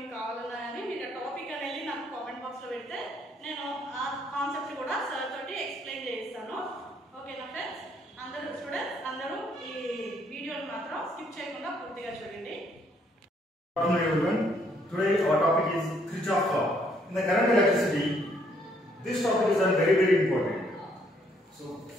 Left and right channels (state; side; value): normal; both; correlation 0.68